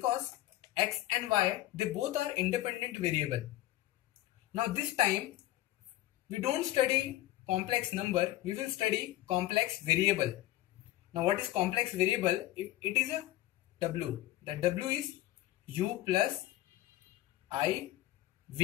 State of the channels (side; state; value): right; quieter; 15.8 dB